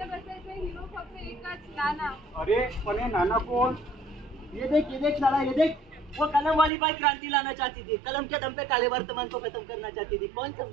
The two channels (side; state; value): left; drops out; at 6.7 s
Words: हिरो फक्त एकच नाना. अरे पण हे नाना कोण? ये देख साला ये देख. वो कलम वाली बाई क्रांति लाना चाहती थी. कलम के दम पे काले वर्तमान को खत्म करना चाहती थी. कौन